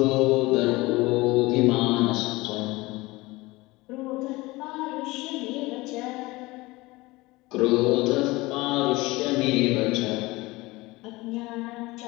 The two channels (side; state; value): right; quieter; 21.4 dB